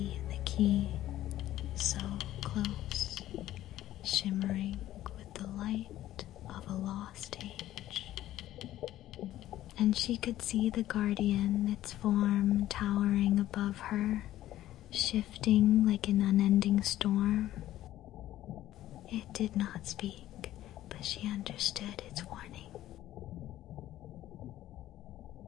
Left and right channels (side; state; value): right; quieter; 13.8 dB